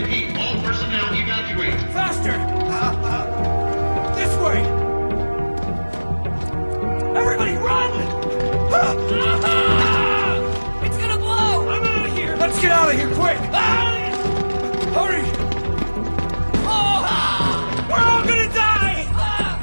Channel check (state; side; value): inverted; both; correlation -1.00